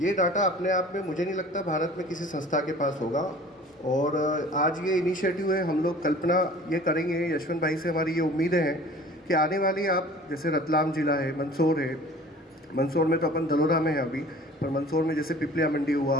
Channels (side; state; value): both; normal; correlation 0.46